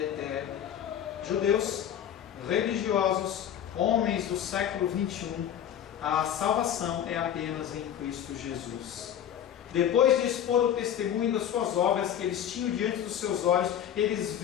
Judeus, religiosos, homens do século 21, a salvação é apenas em Cristo Jesus. Depois de expor o testemunho das suas obras que eles tinham diante dos seus olhos, eles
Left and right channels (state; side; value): quieter; right; 9.9 dB